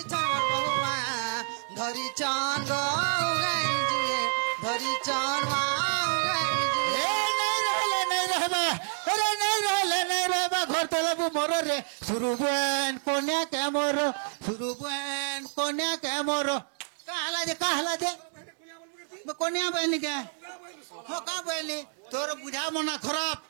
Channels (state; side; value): silent; left; digital silence